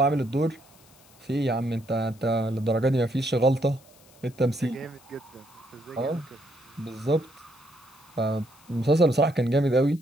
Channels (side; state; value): left; noise; hiss, 27 dB below the sound